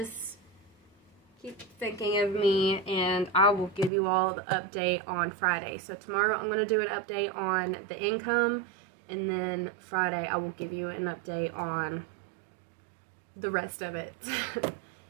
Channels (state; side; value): drops out; left; at 3.9 s